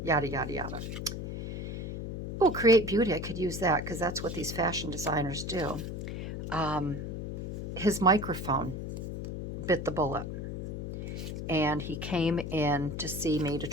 yada, yada, yada. Oh, Create Beauty. I could use that because that's what these fashion designers do. His microphone bit the bullet. And he came in to see me to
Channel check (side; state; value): left; noise; hum, 5 dB below the sound